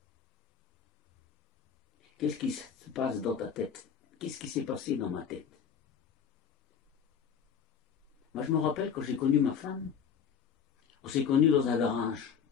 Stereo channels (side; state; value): right; quieter; 7.2 dB